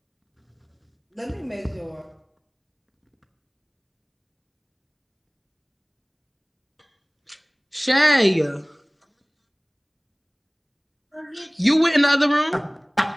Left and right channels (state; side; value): identical; both; correlation 1.00